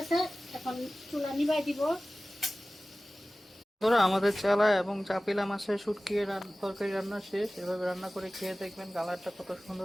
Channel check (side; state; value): both; normal; correlation 0.97